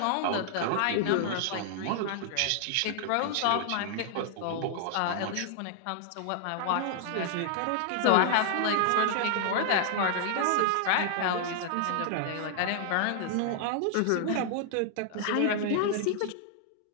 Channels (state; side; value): different; both; correlation 0.00